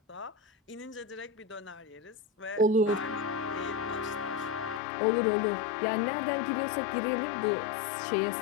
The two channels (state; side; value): drops out; right; at 4.8 s